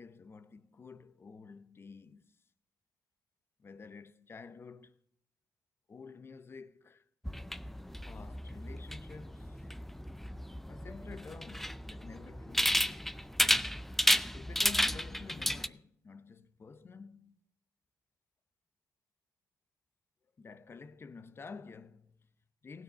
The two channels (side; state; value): both; normal; correlation 0.92